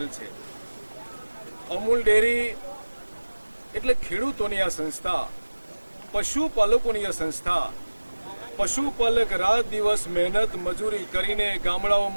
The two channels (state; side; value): inverted; both; correlation -1.00